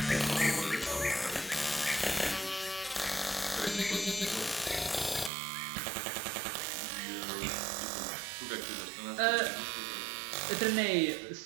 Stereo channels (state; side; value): drops out; left; at 5.3 s